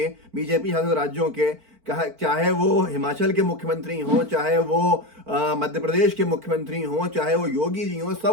बीजेपी शासित राज्यों के, चाहे वो हिमाचल के मुख्यमंत्री हों, चाहे वो मध्य प्रदेश के मुख्यमंत्री हों, चाहे वो योगी जी हों,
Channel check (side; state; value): left; late; 4.5 ms